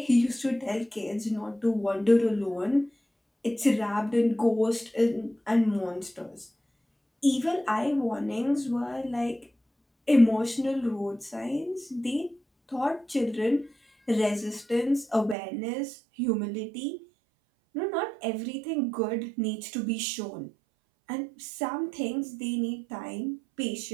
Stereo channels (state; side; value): drops out; left; at 15.4 s